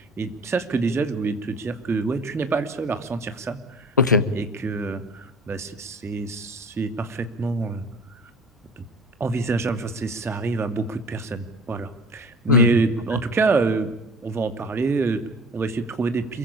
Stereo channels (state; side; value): normal; both; correlation 0.43